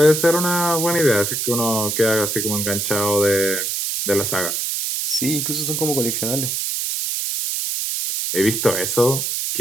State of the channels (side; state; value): right; noise; hiss, 1 dB below the sound